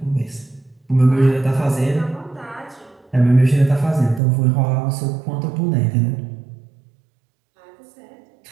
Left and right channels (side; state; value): left; drops out; at 4.2 s